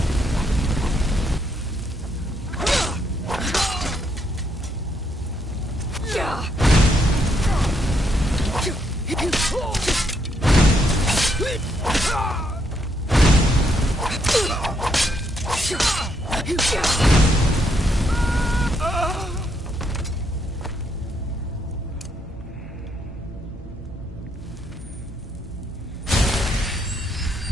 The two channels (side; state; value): both; normal; correlation 0.75